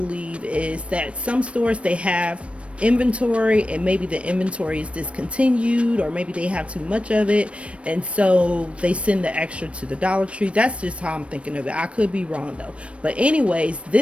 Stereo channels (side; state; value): left; late; 0.061 ms